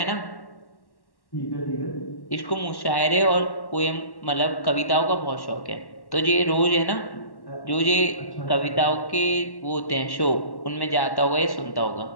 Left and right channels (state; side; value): late; right; 1.1 ms